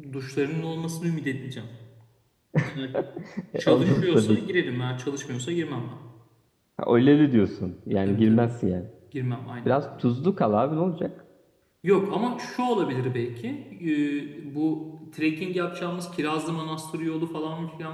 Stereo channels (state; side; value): identical; both; correlation 1.00